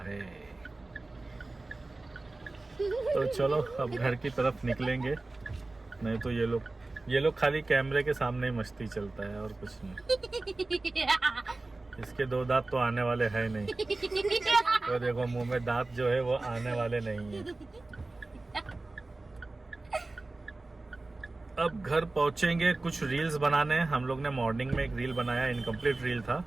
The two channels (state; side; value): quieter; left; 3.2 dB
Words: है। तो चलो अब घर की तरफ निकलेंगे। नहीं तो ये लोग खाली कैमरे के सामने ही मस्ती चलता है और कुछ नहीं। इसके 2 दांत तो आने वाले हैं नहीं। तो देखो मुंह में दांत जो है वो आने वाले नहीं है। अब घर पहुंचेंगे, कुछ रील्स बनाने हैं। हम लोग ने मॉर्निंग में एक रील बनाया, इनकम्प्लीट रील था,